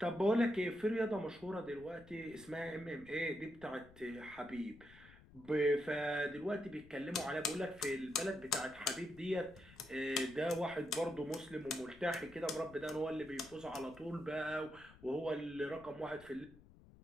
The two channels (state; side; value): noise; left; rumble, 22 dB below the sound